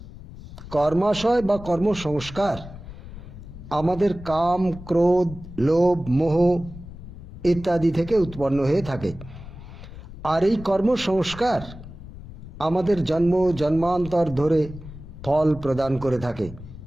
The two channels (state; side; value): noise; left; rumble, 14 dB below the sound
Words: কর্মাশয় বা কর্ম সংস্কার আমাদের কাম, ক্রোধ, লোভ, মোহ ইত্যাদি থেকে উৎপন্ন হয়ে থাকে। আর এই কর্ম সংস্কার আমাদের জন্ম জন্মান্তর ধরে ফল প্রদান করে থাকে।